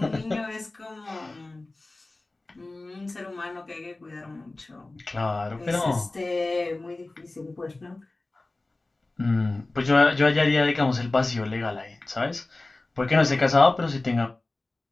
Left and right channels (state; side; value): quieter; right; 3.0 dB